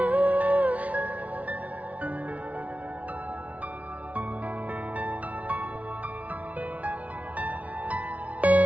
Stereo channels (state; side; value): late; left; 0.068 ms